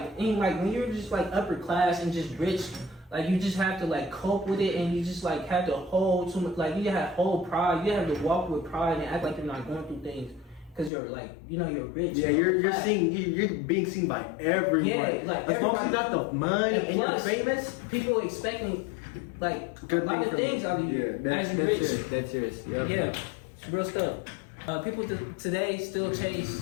when you're just like upper class and just rich. Like you just have to like cope with it, and you just like have to hold you have whole pride. You have to walk with pride and act like you're not going through things because you're like, you know, you're rich. Yeah, you're being seen by everyone. Yeah, like as long as you got the money and plus, you're famous, people expecting like a lot of things out of you. That's serious. That's serious. Yeah, it's real stuff. People today still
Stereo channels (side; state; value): right; drops out; at 10.9 s